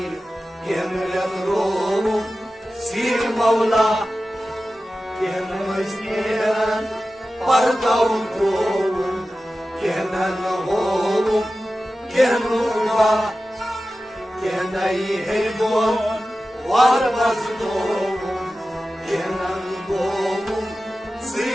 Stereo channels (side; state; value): both; normal; correlation 0.94